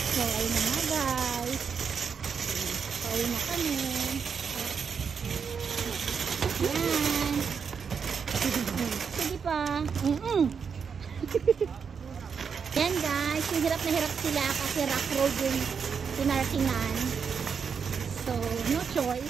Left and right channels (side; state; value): left; quieter; 6.3 dB